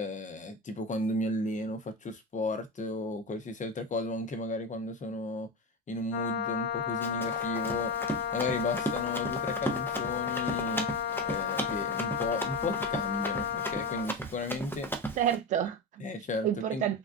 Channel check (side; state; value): both; normal; correlation 0.18